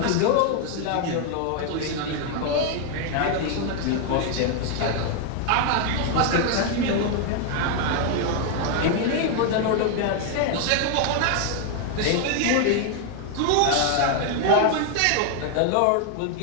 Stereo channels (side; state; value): both; different; correlation 0.00